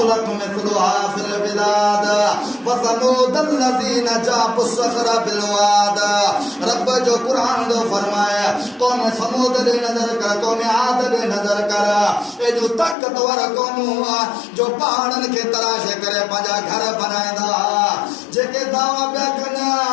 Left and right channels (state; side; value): drops out; right; at 13.0 s